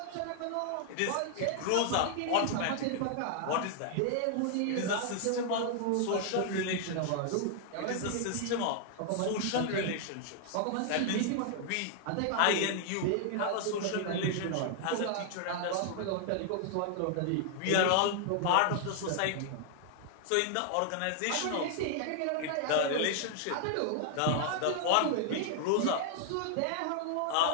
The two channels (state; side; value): different; both; correlation 0.00